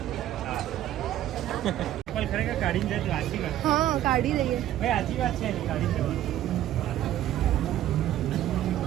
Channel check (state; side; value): quieter; left; 12.7 dB